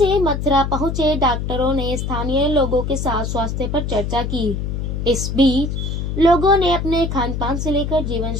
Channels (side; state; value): left; noise; hum, 3 dB below the sound